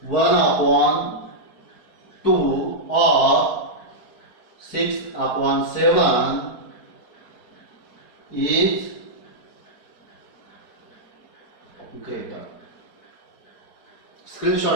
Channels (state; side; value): late; right; 4.6 ms